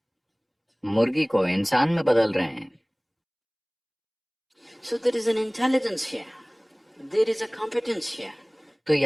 मुर्गी को इंसान में बदल रहे हैं। So there is an intelligence here. There is a competence here. तो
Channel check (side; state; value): both; identical; correlation 1.00